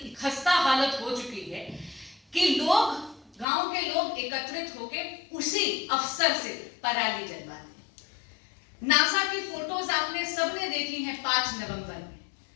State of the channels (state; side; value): drops out; right; at 3.5 s